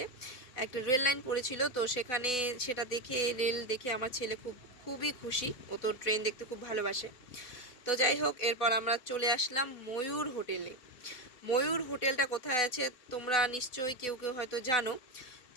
একটা রেল লাইন পড়েছিল, তো সেখানে সেটা দেখে, রেল দেখে আমার ছেলে খুবই খুশি। ও তো ট্রেন দেখতে খুব ভালোবাসে। তো যাই হোক, এরপর আমরা চলে আসলাম ময়ূর হোটেলে। ময়ূর হোটেলটা কোথায় আছে তোমরা নিশ্চয়ই কেউ কেউ হয়তো জানো।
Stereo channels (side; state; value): right; late; 4.0 ms